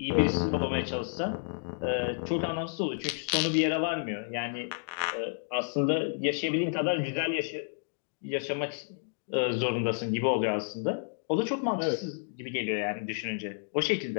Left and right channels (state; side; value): silent; right; digital silence